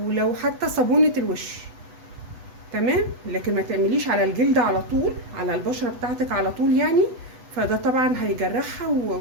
لو حتى صابونه الوش. تمام. لكن ما تعمليش على الجلد على طول، على البشره بتاعتك على طول يعني. فده طبعا هيجرحها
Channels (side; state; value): left; late; 8.0 ms